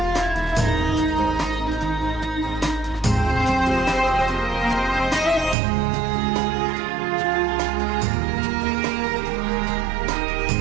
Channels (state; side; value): drops out; left; at 5.6 s